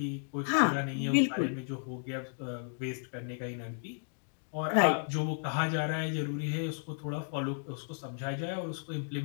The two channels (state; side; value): silent; right; digital silence